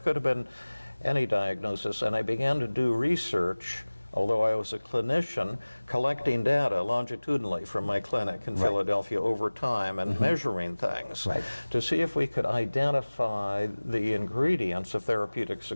could have been any diagnosis. And I began to do research, although I was a clinician, collecting data longitudinally from my clinic in Philadelphia over time and measuring things to see if we could identify the ingredients of therapeutic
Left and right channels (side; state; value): both; inverted; correlation -1.00